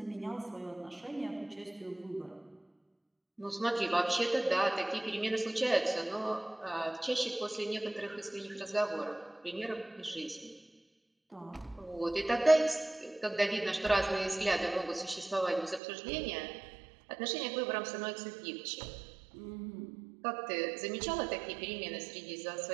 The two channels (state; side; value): drops out; left; at 15.8 s